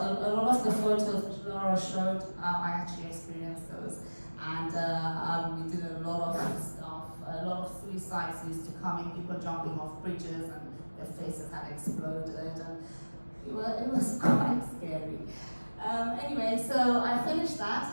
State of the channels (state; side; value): inverted; both; correlation -1.00